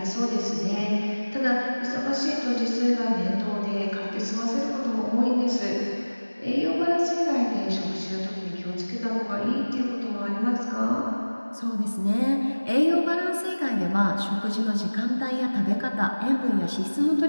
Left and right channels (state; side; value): inverted; both; correlation -1.00